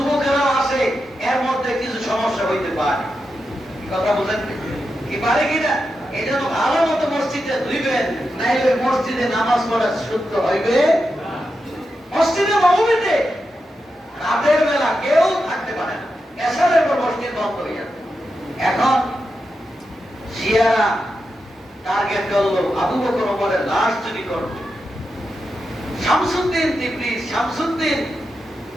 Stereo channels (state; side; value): normal; both; correlation 0.88